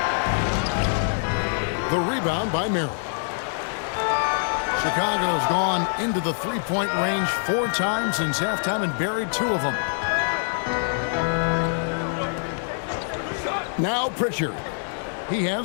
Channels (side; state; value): right; silent; digital silence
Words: The rebound by Merrill. Chicago's gone into the 3-point range 4 times since halftime and buried 2 of them. Now Pritchard. He